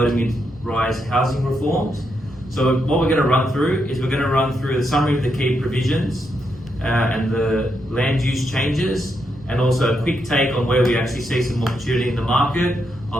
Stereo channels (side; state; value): right; noise; rumble, 24 dB below the sound